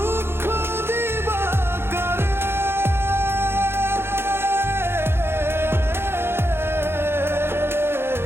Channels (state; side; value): late; left; 0.11 ms